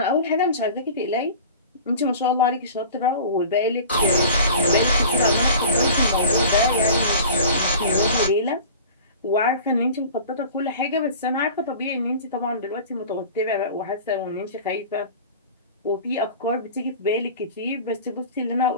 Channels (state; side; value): inverted; both; correlation -0.40